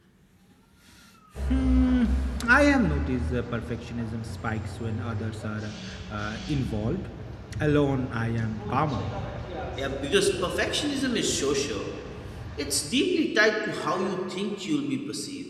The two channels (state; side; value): identical; both; correlation 1.00